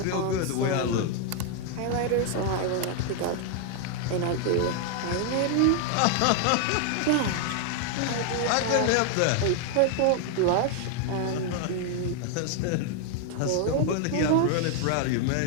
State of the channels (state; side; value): different; both; correlation 0.00